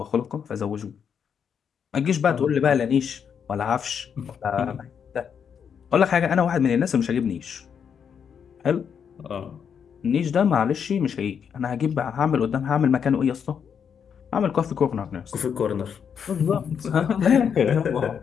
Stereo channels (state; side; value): quieter; right; 7.4 dB